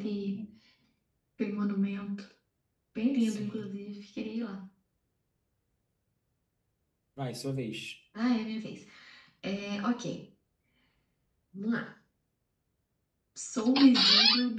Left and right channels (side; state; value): both; identical; correlation 1.00